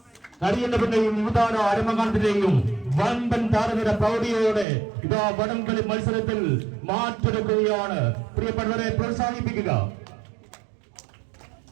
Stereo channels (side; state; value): left; drops out; at 4.7 s